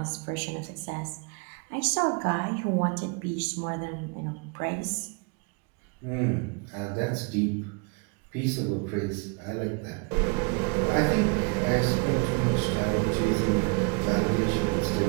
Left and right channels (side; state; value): left; quieter; 33.0 dB